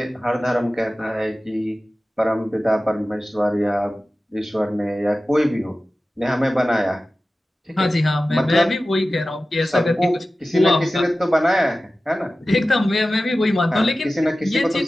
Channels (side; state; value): both; normal; correlation 0.95